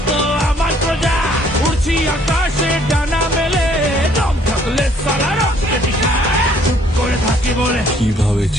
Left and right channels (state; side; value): normal; both; correlation 0.62